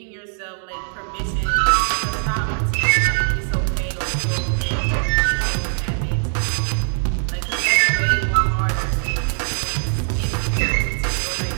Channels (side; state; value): left; silent; digital silence